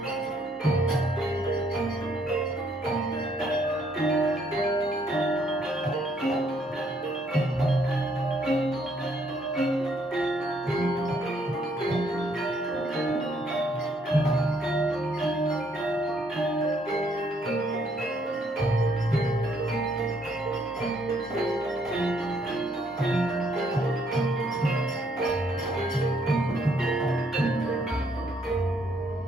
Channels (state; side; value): normal; both; correlation 0.69